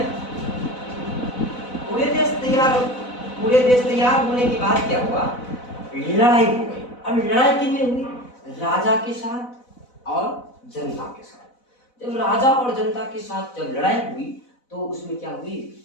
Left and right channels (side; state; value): right; late; 4.0 ms